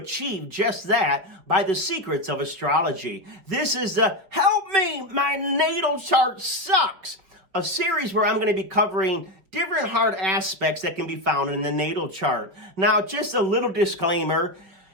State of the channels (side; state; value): left; late; 5.2 ms